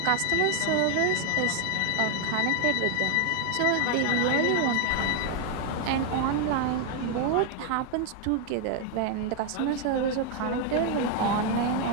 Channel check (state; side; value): different; both; correlation 0.00